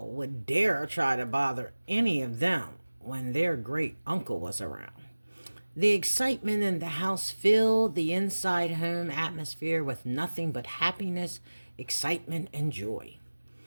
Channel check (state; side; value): inverted; both; correlation -1.00